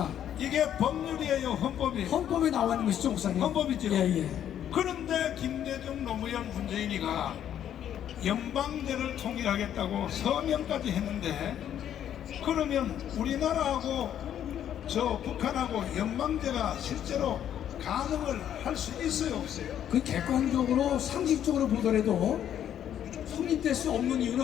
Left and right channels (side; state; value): right; quieter; 10.2 dB